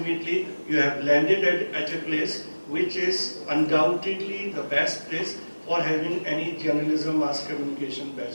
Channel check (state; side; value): inverted; both; correlation -1.00